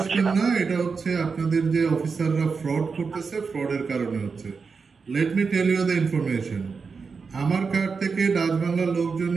না, এটা হচ্ছে আপনাদের যে অফিসাররা ফ্রড করতেছে, ফ্রডের কারণে হচ্ছে। Let me tell you the information. আমার কার্ড থেকে ডাচ বাংলার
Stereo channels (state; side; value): quieter; left; 5.1 dB